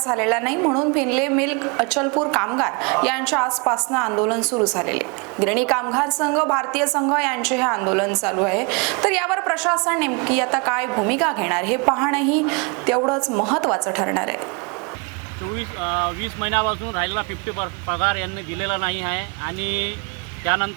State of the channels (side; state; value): left; quieter; 32.0 dB